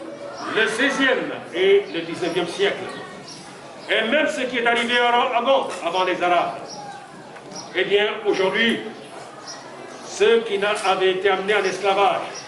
le XVIe et le XIXe siècle, et même ce qui est arrivé avant les Arabes, eh bien, aujourd'hui, ceux qui avaient été amenés en esclavage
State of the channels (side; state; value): both; identical; correlation 1.00